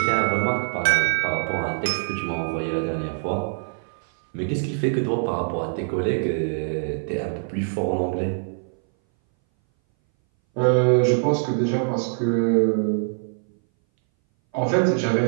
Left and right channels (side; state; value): left; silent; 60 dB below the other